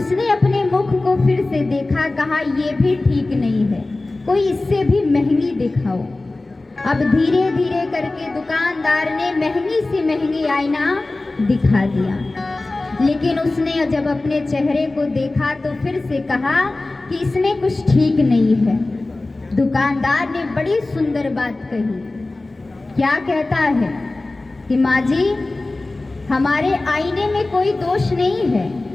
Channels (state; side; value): quieter; right; 3.0 dB